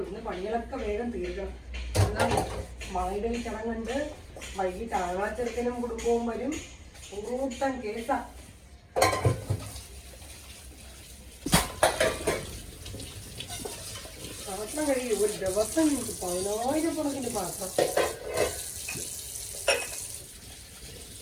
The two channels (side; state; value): both; identical; correlation 1.00